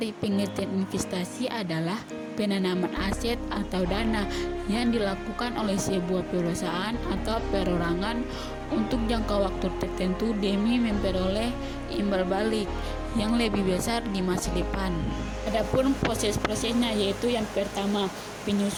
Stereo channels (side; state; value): both; identical; correlation 1.00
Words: pengertian investasi adalah penanaman aset atau dana yang dilakukan oleh sebuah perusahaan atau perorangan untuk jangka waktu tertentu demi memperoleh imbal balik yang lebih besar di masa depan. Adapun proses-prosesnya yaitu yang pertama,